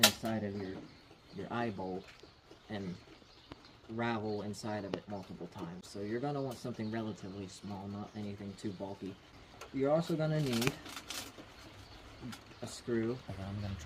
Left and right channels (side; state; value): both; identical; correlation 1.00